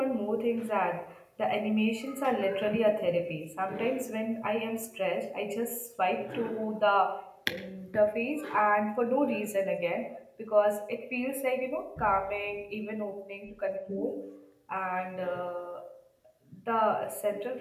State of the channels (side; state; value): both; identical; correlation 1.00